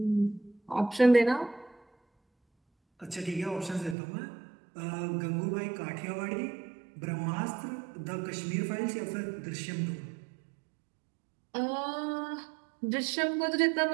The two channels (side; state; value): left; drops out; at 4.0 s